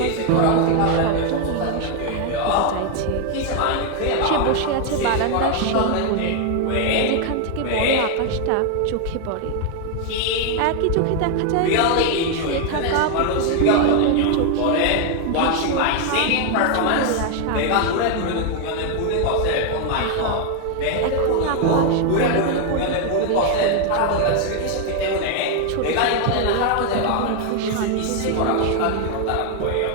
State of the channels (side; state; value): both; different; correlation 0.01